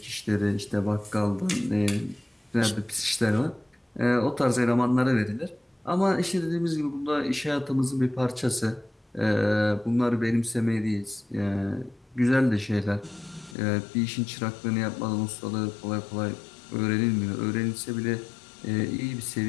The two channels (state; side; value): drops out; right; at 13.6 s